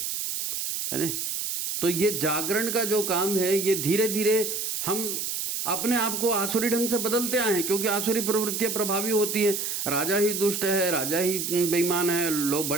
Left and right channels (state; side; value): noise; right; hiss, 3 dB below the sound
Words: नहीं। तो ये जागरण का जो काम है, ये धीरे धीरे हम अपने आप को आसुरी ढंग से बदलते आए हैं, क्योंकि आसुरी प्रवृत्तियां प्रभावी होती हैं। राजा ही दुष्ट है, राजा ही बेईमान है, लोग,